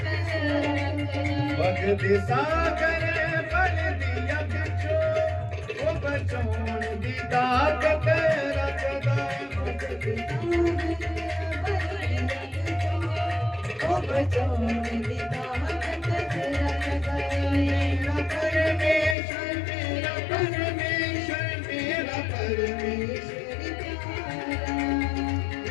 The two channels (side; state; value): right; drops out; at 19.2 s